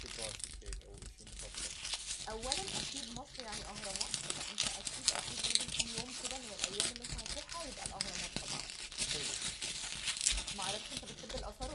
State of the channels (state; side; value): identical; both; correlation 1.00